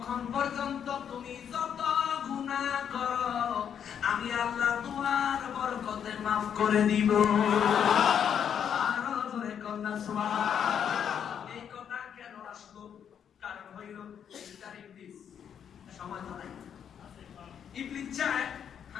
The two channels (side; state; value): right; quieter; 8.4 dB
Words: পর্যন্ত তুমি যত গুনাহ করো আমি আল্লাহ তোমার বরকতে মাফ করে দিব। আরো জোরে কন্যা সুবহানাল্লাহ। এই কথা কেন আসলো? কারণ হইল ইবলিস সময় তো নাই। ইবলিস চায়